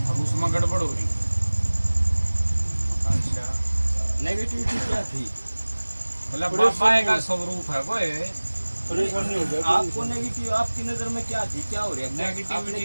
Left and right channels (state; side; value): inverted; both; correlation -1.00